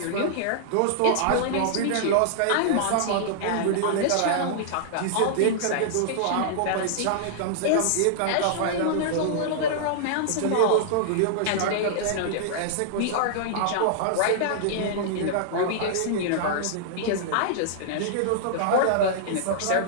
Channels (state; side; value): different; both; correlation -0.02